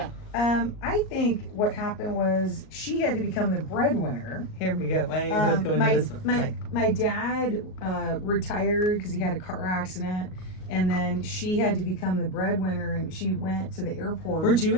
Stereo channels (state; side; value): late; right; 38 ms